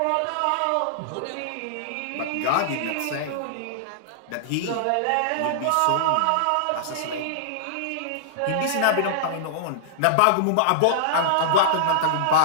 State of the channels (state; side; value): different; both; correlation -0.01